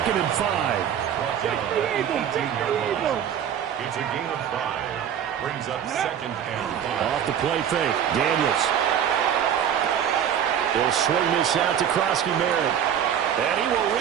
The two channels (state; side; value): quieter; left; 9.2 dB